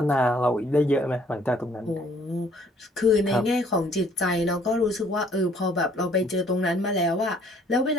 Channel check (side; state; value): both; normal; correlation 0.60